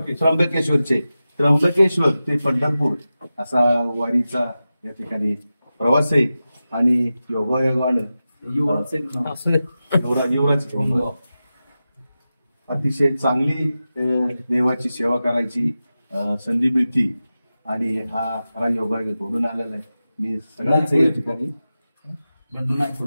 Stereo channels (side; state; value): both; inverted; correlation -0.93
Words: त्र्यंबकेश्वर ते पंढरपूर असा वारीचा या ठिकाणी प्रवास आहे. आणि योगायोगानं अतिशय चांगली देवाची सेवा करायची संधी मिळती आणि हा खरा योगायोग घडून आलेला आहे. मी सगळ्यांचं या ठिकाणी